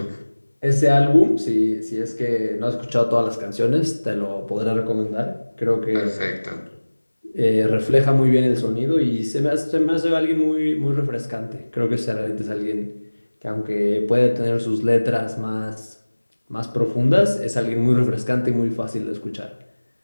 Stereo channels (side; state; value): both; inverted; correlation -1.00